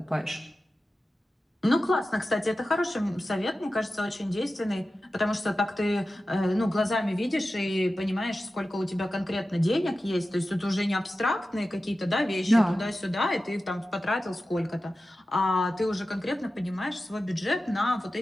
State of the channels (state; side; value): normal; both; correlation 0.94